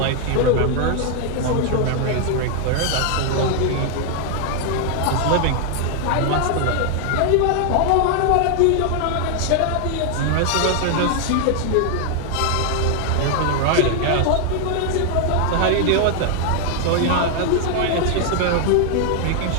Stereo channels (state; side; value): different; both; correlation 0.00